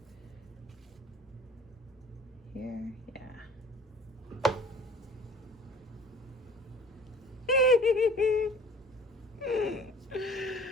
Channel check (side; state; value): both; normal; correlation 0.48